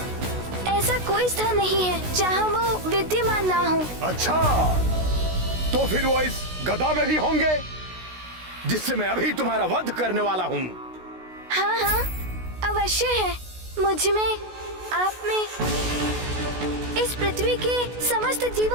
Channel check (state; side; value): late; left; 16 ms